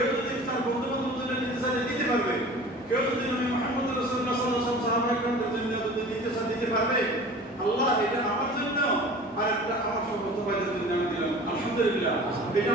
যদি তার বন্ধু বান্ধবের জন্য দিতে চায় দিতে পারবে, কেউ যদি নবী মুহাম্মদ রাসূলুল্লাহ সাল্লাল্লাহু আলাইহি ওয়াসাল্লাম সাহাবায়ে-কেরামের জন্য যদি দিতে চায় দিতে পারবে। আল্লাহ এটা আমার জন্য আর একটা আমার সমস্ত ভাইদের জন্য আমি দিলাম। আলহামদুলিল্লাহ। এটা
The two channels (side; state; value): both; normal; correlation 0.41